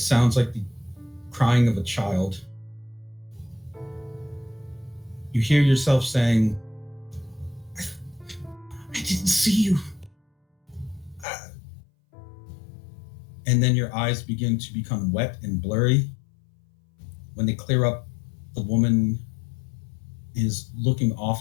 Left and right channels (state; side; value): drops out; right; at 11.2 s